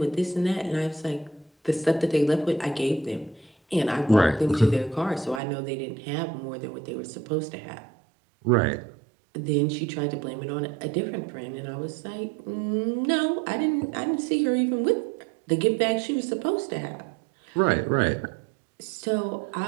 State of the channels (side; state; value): left; drops out; at 5.4 s